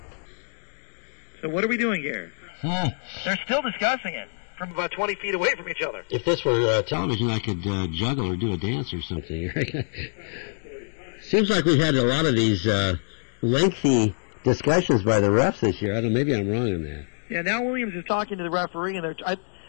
So what are we doing here? They're still discussing it from about 20 feet away from each other. If this were television, I could juggle or do a dance or something. Seems like we've had a lot of these lengthy discussions by the refs this year. I don't know, maybe I'm wrong on that. Yeah, now Williams is talking to the referee, and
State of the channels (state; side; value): silent; right; digital silence